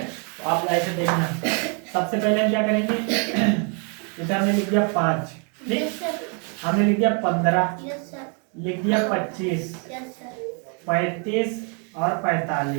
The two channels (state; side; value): quieter; left; 37.9 dB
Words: आप ऐसे देखना, सबसे पहले हम क्या करेंगे, इधर हमने लिख दिया 5, ठीक, हमने लिख दिया 15, लिख दिया 25, 35 और